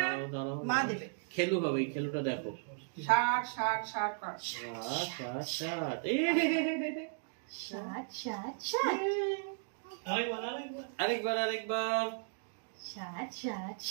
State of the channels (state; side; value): silent; left; digital silence